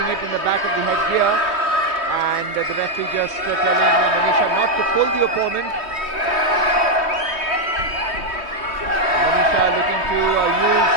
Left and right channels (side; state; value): left; late; 3.2 ms